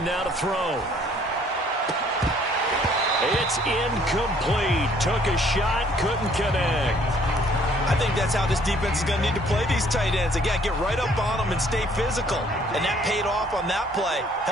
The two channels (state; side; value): normal; both; correlation 0.60